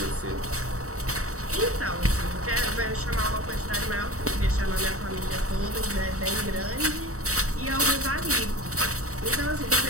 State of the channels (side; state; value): left; late; 0.65 ms